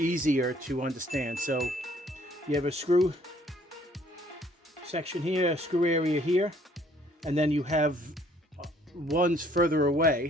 to understand. So you have a screw section here, a screw area here, and then you have ones further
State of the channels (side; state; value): both; normal; correlation 0.61